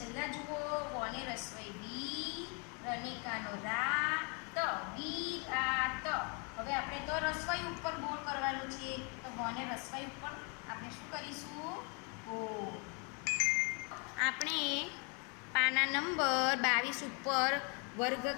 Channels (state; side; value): quieter; right; 34.9 dB